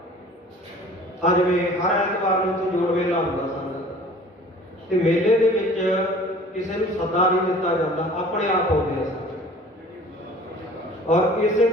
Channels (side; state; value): both; normal; correlation 0.48